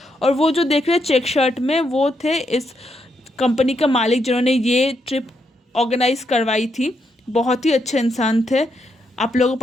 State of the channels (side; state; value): both; normal; correlation 0.79